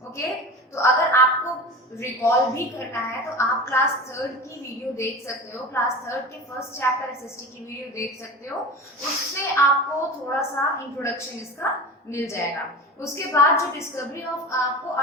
ओके, तो अगर आपको रिकॉल भी करना है तो आप क्लास 3rd की वीडियो देख सकते हो। क्लास 3rd के फर्स्ट चैप्टर एसएसटी की वीडियो देख सकते हो, उससे आपको थोड़ा सा इंट्रोडक्शन इसका मिल जाएगा। उसके बाद जो डिस्कवरी ऑफ, आपको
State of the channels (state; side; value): normal; both; correlation 0.31